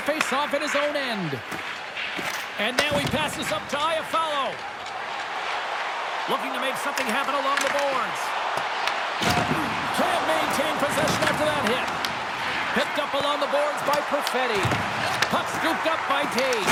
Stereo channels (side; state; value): both; identical; correlation 1.00